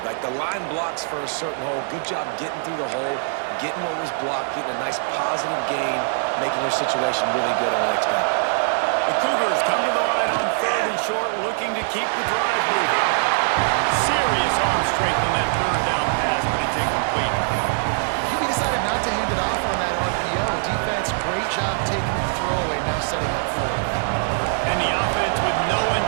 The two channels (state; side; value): silent; left; digital silence